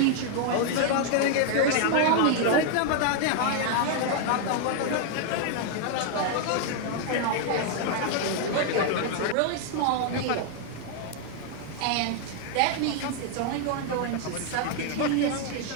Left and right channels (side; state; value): both; different; correlation 0.00